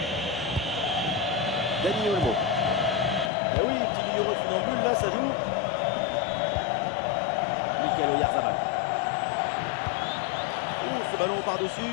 Dani Olmo. Eh oui, petit numéro de funambule, là, ça joue. Mikel Oyarzabal. Ouh, ce ballon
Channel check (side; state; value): right; drops out; at 3.3 s